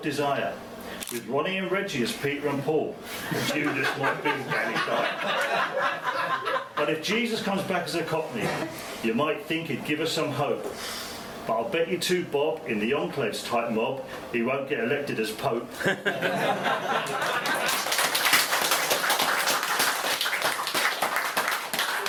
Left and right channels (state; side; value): identical; both; correlation 1.00